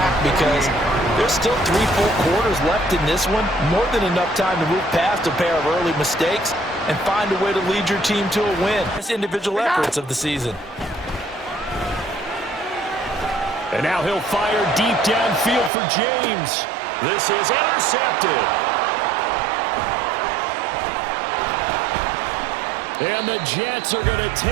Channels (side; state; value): left; drops out; at 15.7 s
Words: because there's still 3 full quarters left in this one. More than enough time to move past a pair of early mistakes and find a way to lead your team to a win. It's individual efforts of the season. And now he'll fire deep downfield for James. This is intercepted. And the Jets are going to